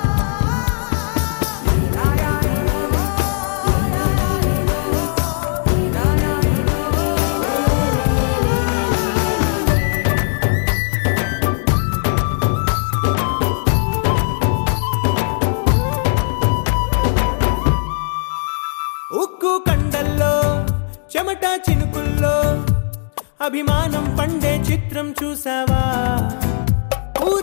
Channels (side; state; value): right; silent; digital silence